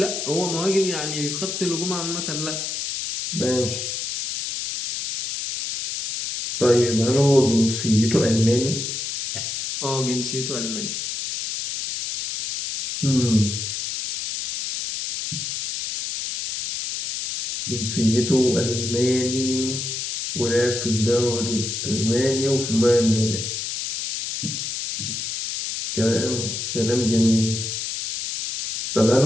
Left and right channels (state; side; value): noise; left; hiss, 4 dB below the sound